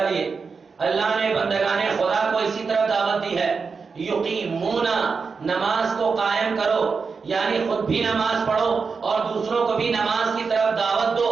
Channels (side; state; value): left; quieter; 5.1 dB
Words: اللہ نے بندگان خدا کو اسی طرح دعوت دی ہے. یقیمونا، نماز کو قائم کرو، یعنی خود بھی نماز پڑھو اور دوسروں کو بھی نماز کی طرف دعوت دو.